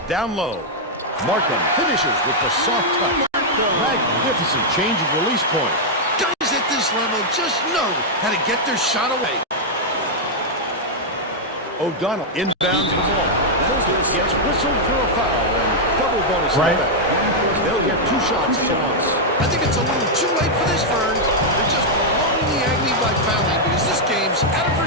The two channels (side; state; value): both; normal; correlation -0.04